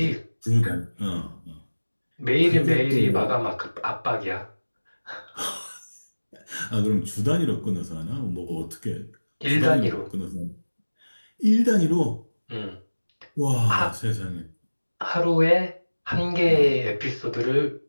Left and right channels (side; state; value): both; inverted; correlation -1.00